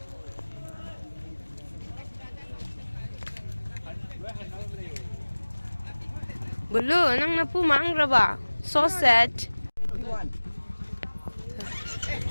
Bulu, nang napu mangraba. So sad.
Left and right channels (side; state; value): both; inverted; correlation -1.00